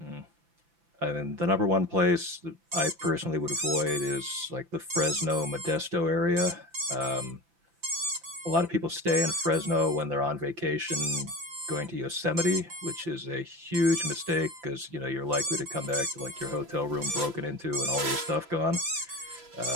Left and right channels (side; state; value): left; late; 5.9 ms